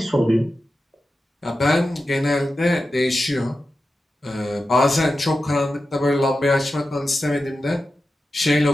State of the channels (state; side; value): normal; both; correlation 0.92